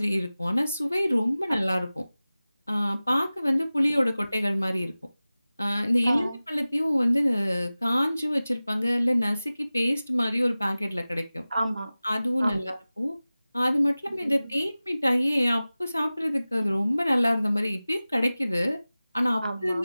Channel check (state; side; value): inverted; both; correlation -0.97